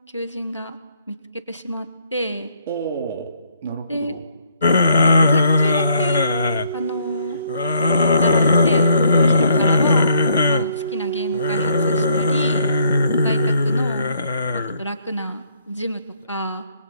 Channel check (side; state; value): both; inverted; correlation -0.68